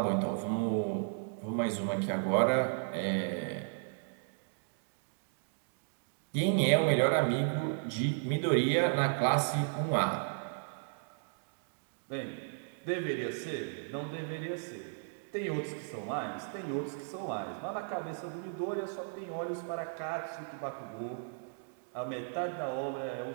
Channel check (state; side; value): silent; left; digital silence